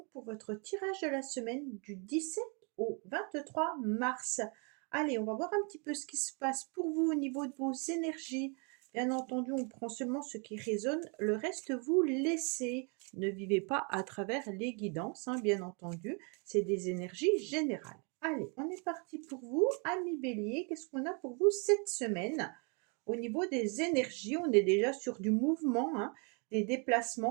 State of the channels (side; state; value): left; quieter; 35.4 dB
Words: pour votre tirage de la semaine du 17 au 23 mars. Allez, on va voir un petit peu ce qui se passe pour vous au niveau de vos énergies. Bien entendu, on prend seulement ce qui résonne, le reste vous laissez. Ne vivez pas à travers les guidances, bien entendu, c'est des énergies générales. Allez, on est parti pour vous, amis béliers. Qu'est-ce qu'on a pour vous cette semaine ? Au niveau des énergies, on est déjà sur du mouvement, des